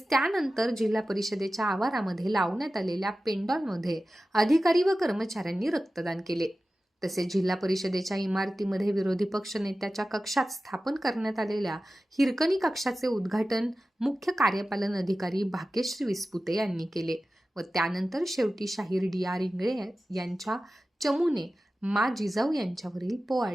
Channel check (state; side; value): normal; both; correlation 0.95